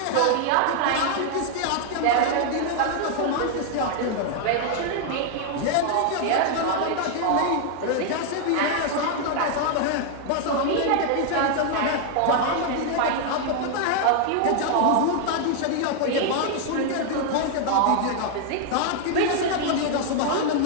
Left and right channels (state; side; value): different; both; correlation 0.00